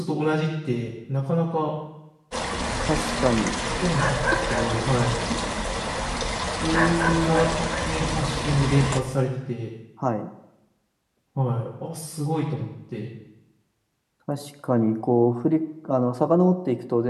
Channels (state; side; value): identical; both; correlation 1.00